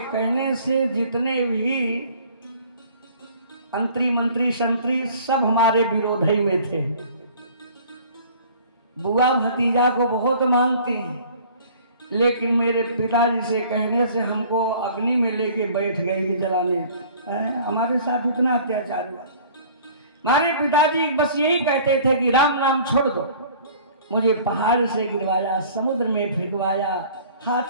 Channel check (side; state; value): both; inverted; correlation -0.51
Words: कहने से जितने भी अंतरी मंत्री संतरी सब हमारे विरोध ही में थे। बुआ भतीजा को बहुत मानते हैं, लेकिन मेरे पिताजी से कहने से हमको अग्नि में लेके बैठ गए कि जलाने। हमारे साथ इतना अत्याचार हुआ। हमारे पिताजी बस यही कहते थे कि राम नाम छोड़ दो। मुझे पहाड़ से गिरवाया, समुद्र में फेंकवाया,